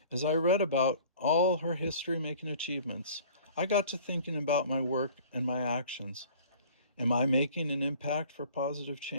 As I read about all her history-making achievements, I got to thinking about my work and my actions. Am I making an impact for positive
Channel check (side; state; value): both; inverted; correlation -0.49